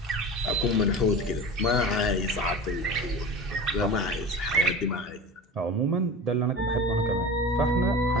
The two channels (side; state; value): both; normal; correlation 0.32